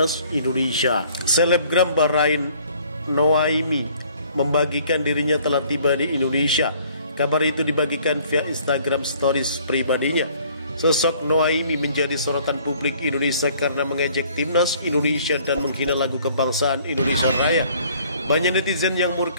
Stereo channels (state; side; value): inverted; both; correlation -0.58